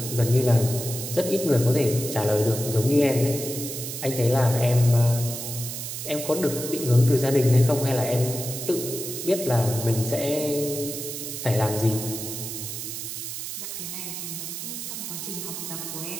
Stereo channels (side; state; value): right; noise; hiss, 6 dB below the sound